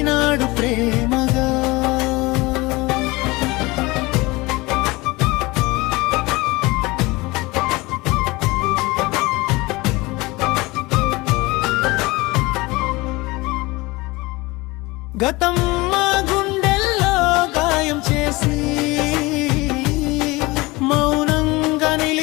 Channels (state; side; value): quieter; right; 22.6 dB